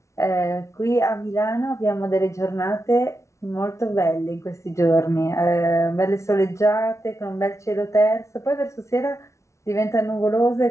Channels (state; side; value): late; right; 0.14 ms